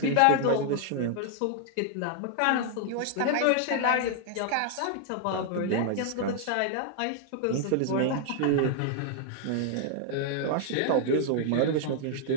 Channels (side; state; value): both; different; correlation 0.00